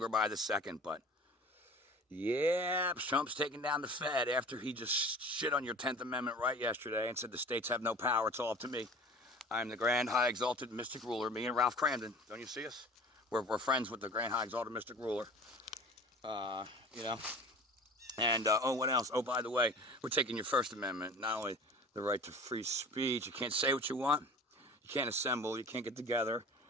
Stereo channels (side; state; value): both; normal; correlation 0.41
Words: by the second. But yeah, Trump's taking down the Fed after he just shit on your 10th Amendment right yesterday and said the states have no power, it's all up to me. I'm the grand, high, exalted, mystic ruler, me and Ralph Cramden. Don't you see us? We're friends with the grand, high, exalted, mystic ruler. You know. And, oh, what else? Oh, by the way, we're taking your First Amendment, not only the right to free speech, you can't say what you want, you can't assemble, you can't get together